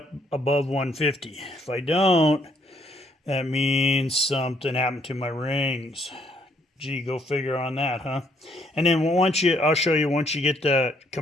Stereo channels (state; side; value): normal; both; correlation 0.68